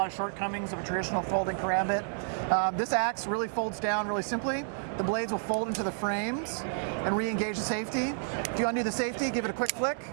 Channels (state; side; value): silent; left; digital silence